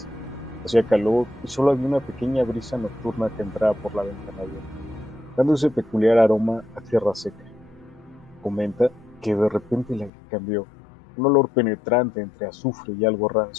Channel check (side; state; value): right; drops out; at 10.1 s